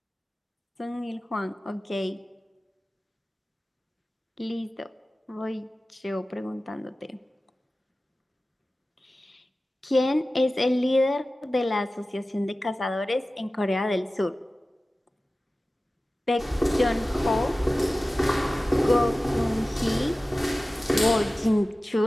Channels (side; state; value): both; normal; correlation 0.96